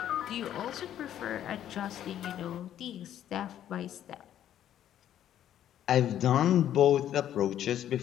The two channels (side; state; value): right; quieter; 11.1 dB